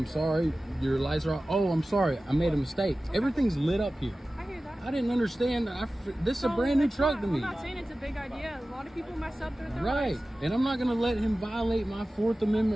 sorry, your lights are out. Oh, I'm sorry, I made a mistake. Okay. Everything's lit up here. I hear that. I didn't understand. This is a brand new truck to me. I'm not saying it's a big idea. A lot of people mess up their right, rights. And I'm not going to let him violate my Fourth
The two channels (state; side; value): normal; both; correlation 0.96